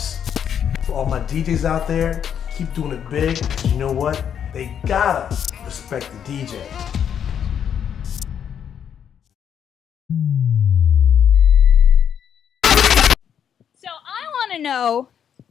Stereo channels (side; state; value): right; quieter; 8.5 dB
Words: For all my DJs out there, keep doing it big, because you know what? They gotta respect the DJ. So I want to know,